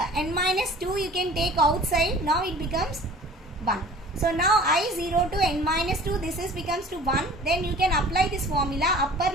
minus 2 you can take outside. Now it becomes 1. So now I0 to n minus 2, this is becomes to 1. Then you can apply this formula, upper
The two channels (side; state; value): both; normal; correlation 0.46